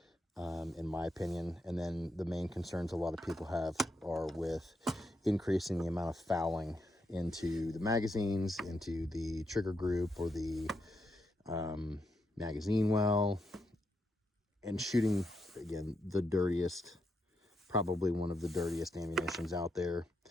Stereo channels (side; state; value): both; normal; correlation 0.82